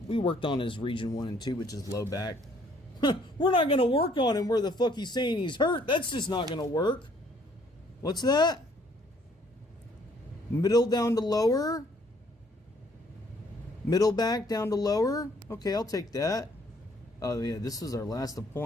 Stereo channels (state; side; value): normal; both; correlation 0.63